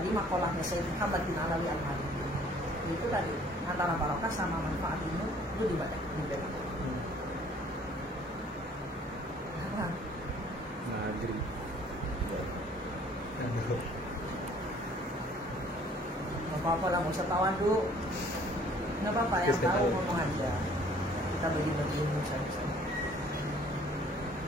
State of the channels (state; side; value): normal; both; correlation 0.56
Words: makolahnya Sayyid Muhammad bin Alawi Al-Maliki itu tadi antara barokah sama manfaat ilmu itu dibedakan. Apa? Maghrib. Nggak apa-apa lah, nggak usah tawan dulu. Nggak apa-apa, yang tahu ngomong aja. Kita bagi-bagi ilmu saja.